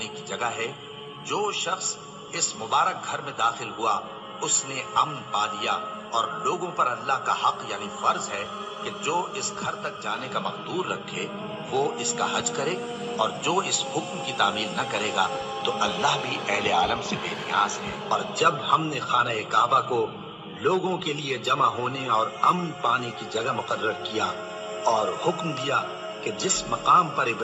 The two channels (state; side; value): identical; both; correlation 1.00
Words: کی جگہ ہے۔ جو شخص اس مبارک گھر میں داخل ہوا اس نے امن پا لیا، اور لوگوں پر اللہ کا حق یعنی فرض ہے کہ جو اس گھر تک جانے کا مقدور رکھے وہ اس کا حج کرے، اور جو اس حکم کی تعمیل نہ کرے گا تو اللہ بھی اہل عالم سے بے نیاز ہے۔ اور جب ہم نے خانہ کعبہ کو لوگوں کے لیے جمع ہونے اور امن پانے کی جگہ مقرر کیا اور حکم دیا کہ جس مقام پر